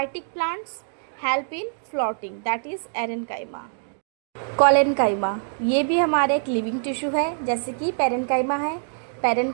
plants help in floating, that is एरेन्काइमा। Collenchyma, ये भी हमारे एक लिविंग टिश्यू है, जैसे कि पैरेन्काइमा है।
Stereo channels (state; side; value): silent; left; digital silence